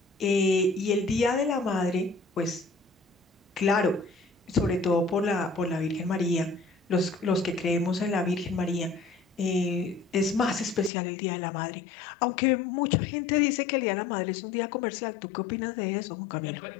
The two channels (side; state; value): right; drops out; at 10.9 s